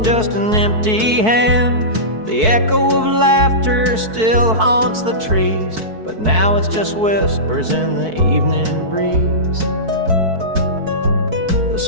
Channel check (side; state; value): left; late; 4.6 ms